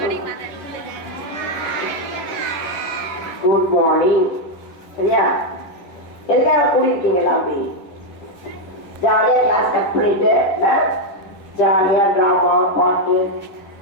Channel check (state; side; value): late; right; 10 ms